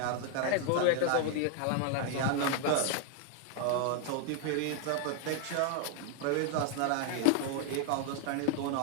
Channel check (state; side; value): different; both; correlation 0.01